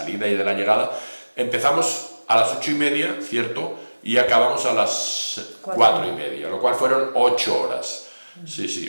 y de la llegada. Empezamos a las 8:30, ¿cierto? Y acabamos a las 4:30, lo cual fueron 8 horas.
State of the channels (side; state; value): both; inverted; correlation -1.00